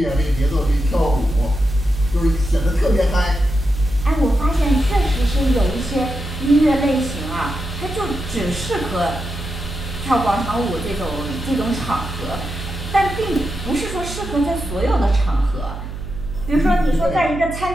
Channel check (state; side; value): noise; right; hum, 9 dB below the sound